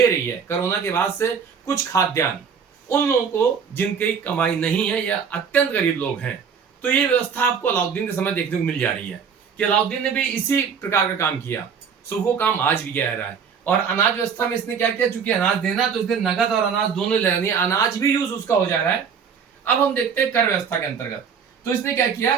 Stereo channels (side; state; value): left; quieter; 6.7 dB